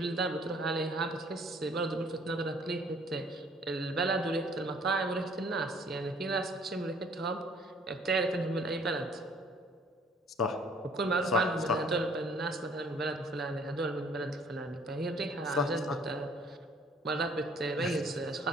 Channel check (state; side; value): normal; both; correlation 0.58